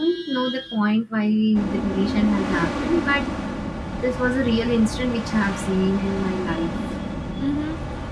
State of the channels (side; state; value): both; identical; correlation 1.00